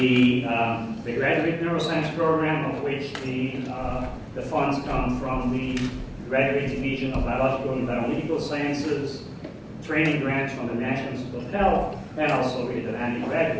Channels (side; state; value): both; identical; correlation 1.00